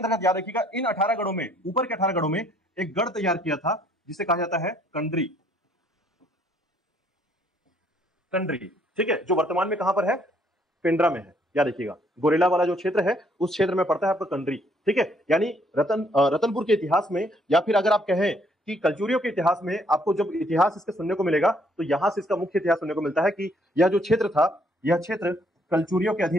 याद रखिएगा इन 18 गढ़ों में, ऊपर के 18 गढ़ों में एक गढ़ तैयार किया था जिसे कहा जाता है कंडरी। कंडरी, ठीक है, जो वर्तमान में कहां पर है, पेंड्रा में है। याद रखिएगा गोरेला वाला जो क्षेत्र है उस क्षेत्र में पड़ता है आपका कंडरी। ठीक है, यानी रतनपुर के इतिहास में, या फिर अगर आप कहें कि कलचुरियों के इतिहास में, आपको जब इतिहास इसके सुनने को मिलेगा तो यहां से इसका मुख्य इतिहास सुनने को मिलता है कि यह जो क्षेत्र था, यह क्षेत्र कलचुरियों के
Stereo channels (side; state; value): both; normal; correlation 0.66